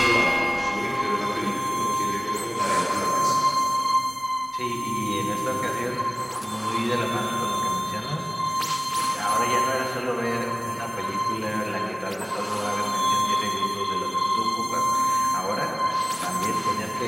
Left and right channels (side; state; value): both; identical; correlation 1.00